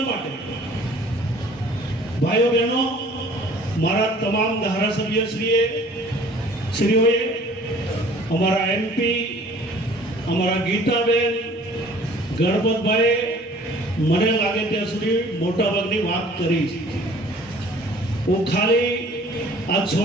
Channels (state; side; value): normal; both; correlation 0.52